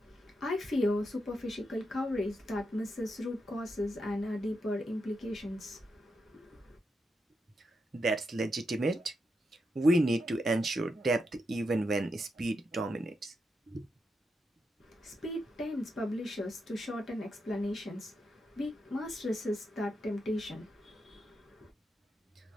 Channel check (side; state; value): both; normal; correlation 0.84